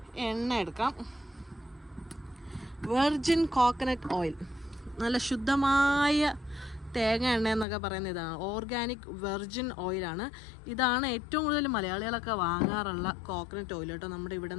എണ്ണ എടുക്കാം. വെർജിൻ കോക്കനട്ട് ഓയിൽ, നല്ല ശുദ്ധമായ തേങ്ങ എണ്ണ എന്നൊക്കെ പറയുന്ന ഇതാണ്. ഓർഗാനിക് വെർജിൻ ഓയിലാണ്. ഇതാണ് ഏറ്റവും കൂടുതൽ മലയാളികളൊക്കെ വാങ്ങാറുള്ള കോക്കനട്ട് ഓയിൽ കേട്ടോ. നമ്മുടെ ഇവിടെ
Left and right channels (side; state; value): right; drops out; at 7.7 s